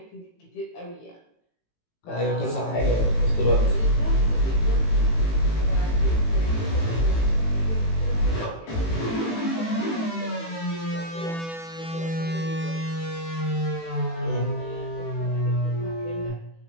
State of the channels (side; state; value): right; late; 18 ms